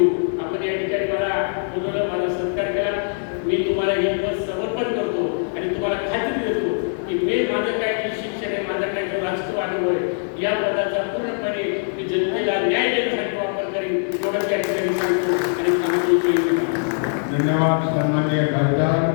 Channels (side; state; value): right; silent; digital silence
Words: आपण या ठिकाणी मला बोलवलं, माझा सत्कार केला. मी तुम्हाला हे पद समर्पण करतो आणि तुम्हाला खात्री देतो की मी माझं काय जे शिक्षण आहे, माझा काय जो राजकीय अनुभव आहे, या पदाचा पूर्णपणे मी जनतेला न्याय देण्यासाठी वापर करेन. एवढंच या ठिकाणी सांगतो आणि सांगतो. धन्यवाद सन्माननीय खासदार